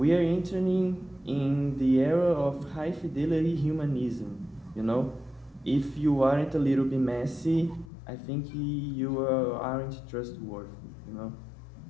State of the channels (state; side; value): drops out; right; at 7.9 s